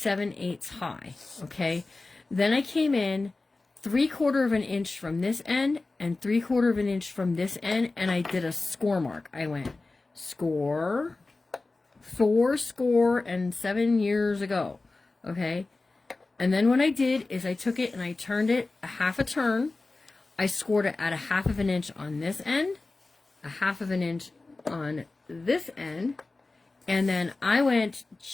high. Okay. Then I came in 3/4 of an inch from this end and 3/4 of an inch from this end, and I did a score mark. I went score, 4 score, and 7 years ago. Okay. And then what I did is I took it and I turned it a half a turn. I scored it at 1/2 of an inch on this end, 1/2 of an inch on this end, and then I went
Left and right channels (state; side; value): quieter; right; 3.4 dB